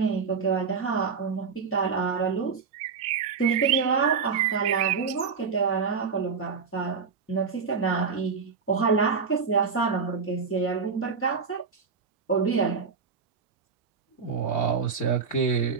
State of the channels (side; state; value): left; quieter; 5.7 dB